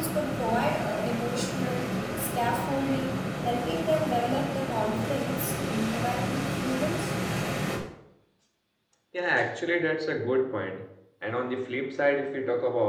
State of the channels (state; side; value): identical; both; correlation 1.00